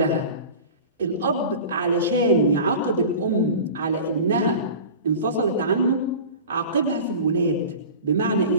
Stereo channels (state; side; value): inverted; both; correlation -0.36